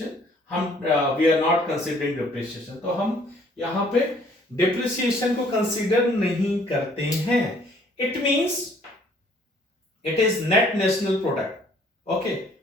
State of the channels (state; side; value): normal; both; correlation 0.60